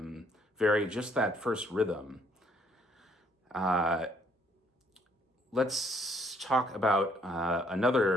vary just that first rhythm. Let's talk about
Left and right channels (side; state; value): both; normal; correlation 0.66